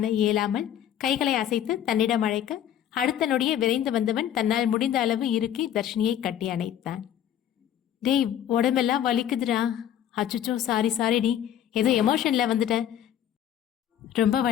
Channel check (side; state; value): right; quieter; 10.6 dB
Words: இயலாமல் கைகளை அசைத்து தன்னிடம் அழைக்க, அடுத்த நொடியே விரைந்து வந்தவன் தன்னால் முடிந்த அளவு இறுக்கி தர்ஷினியை கட்டி அணைத்தான். டேய், உடம்பெல்லாம் வலிக்குதுடா. அச்சுச்சோ, சாரிடி, ஏதோ எமோஷன்ல வந்துட்டேன். ரொம்ப